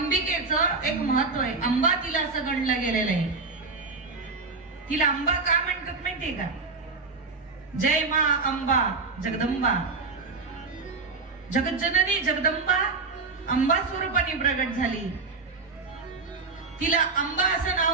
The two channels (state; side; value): quieter; left; 4.3 dB